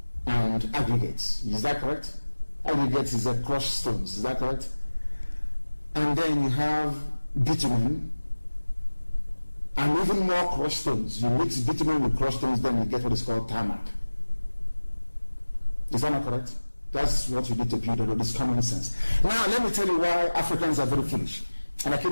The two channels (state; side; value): inverted; both; correlation -1.00